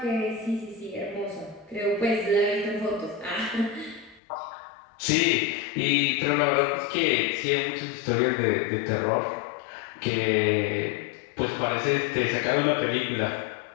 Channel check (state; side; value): drops out; right; at 4.2 s